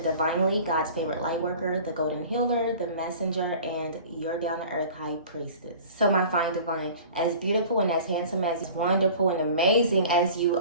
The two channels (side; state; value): both; inverted; correlation -0.43